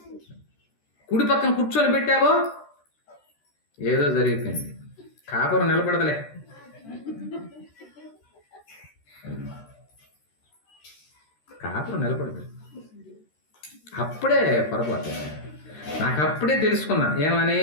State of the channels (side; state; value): right; late; 13 ms